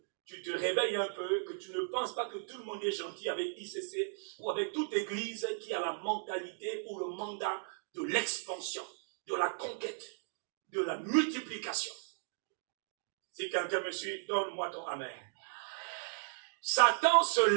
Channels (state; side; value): silent; left; digital silence